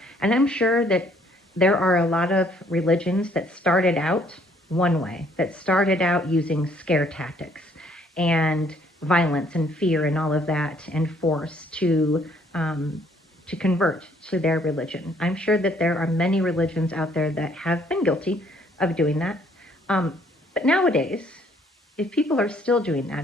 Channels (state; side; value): normal; both; correlation 0.64